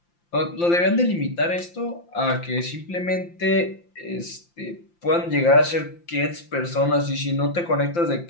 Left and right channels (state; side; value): late; right; 5.8 ms